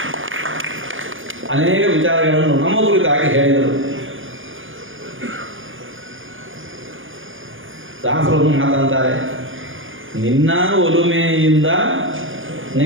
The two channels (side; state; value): left; late; 0.58 ms